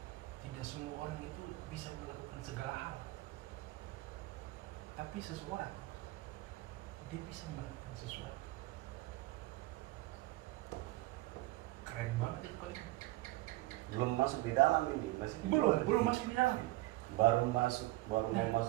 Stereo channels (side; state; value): left; quieter; 18.7 dB